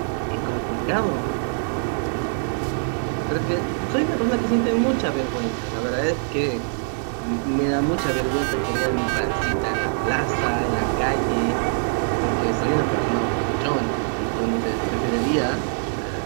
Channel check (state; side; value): silent; left; 63 dB below the other